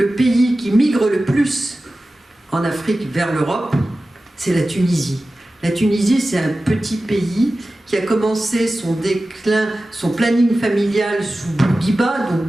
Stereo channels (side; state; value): both; normal; correlation 0.95